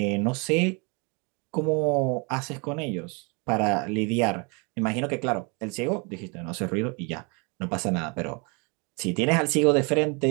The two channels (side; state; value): left; quieter; 32.0 dB